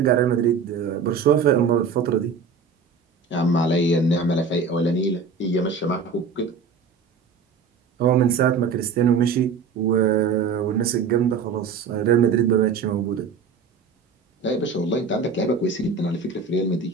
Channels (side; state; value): left; quieter; 5.3 dB